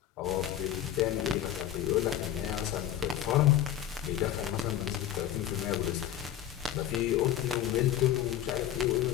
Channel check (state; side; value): quieter; right; 11.5 dB